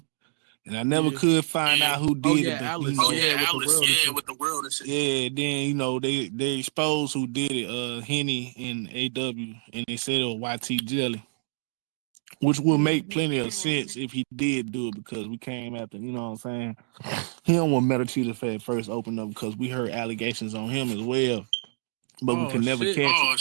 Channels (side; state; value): left; silent; digital silence